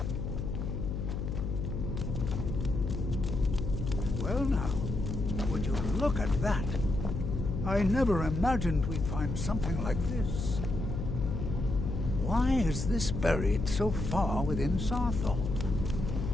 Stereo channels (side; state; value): left; noise; hum, 3 dB below the sound